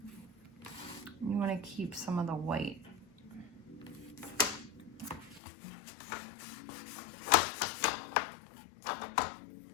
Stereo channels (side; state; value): right; drops out; at 5.4 s